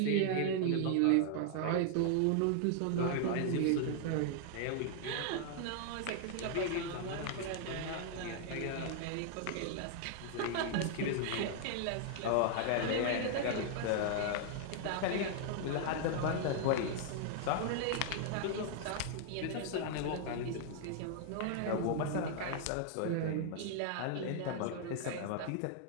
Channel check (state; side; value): different; both; correlation 0.00